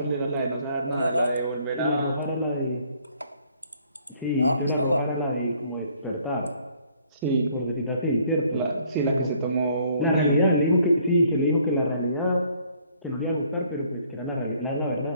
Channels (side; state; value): both; inverted; correlation -0.62